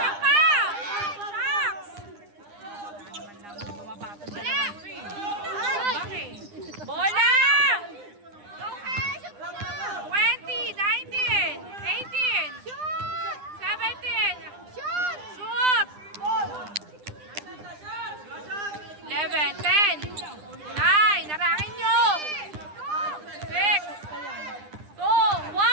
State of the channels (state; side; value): late; left; 9.9 ms